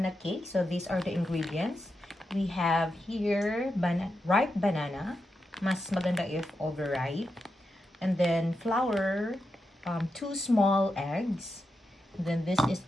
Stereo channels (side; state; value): both; normal; correlation 0.87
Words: cake. So these are the ingredients. We have here ripe banana. Mas maganda if overripe. And then flour, 2 small eggs. And then this is